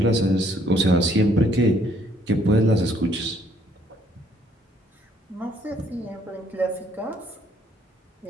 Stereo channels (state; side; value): normal; both; correlation 0.66